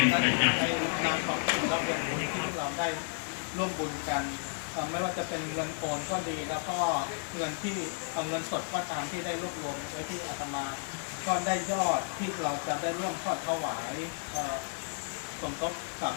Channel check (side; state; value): right; silent; 56 dB below the other